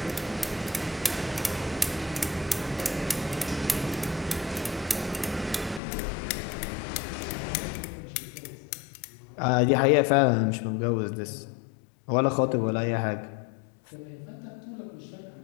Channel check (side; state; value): right; drops out; at 5.8 s